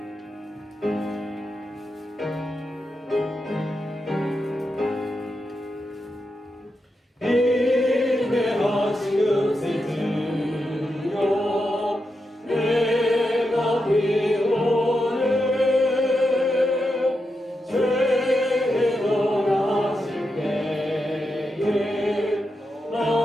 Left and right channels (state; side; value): normal; both; correlation 0.87